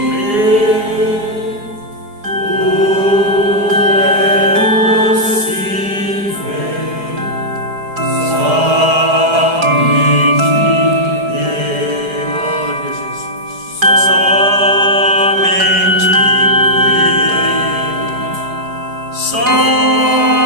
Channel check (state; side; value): late; left; 4.8 ms